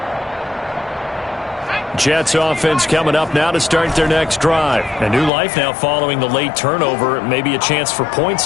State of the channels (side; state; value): right; drops out; at 5.3 s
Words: Jets offense coming up now to start their next drive. A new life now following the late turnover. Maybe a chance for points